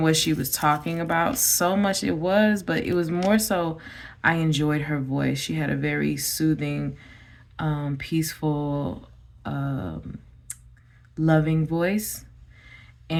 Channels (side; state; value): both; identical; correlation 1.00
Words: what she was talking about so much. It was, but it was more so I enjoyed her voice. She had a very soothing, peaceful, loving voice.